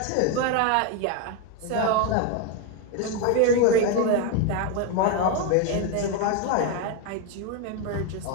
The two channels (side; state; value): both; different; correlation 0.02